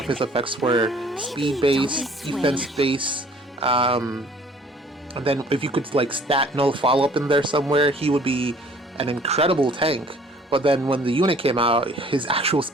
his effects were: speed base, defense base, and then if you could like stat null follow up in there somewhere, he would be an incredible tank. But then when the unit came out, his actual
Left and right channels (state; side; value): normal; both; correlation 0.54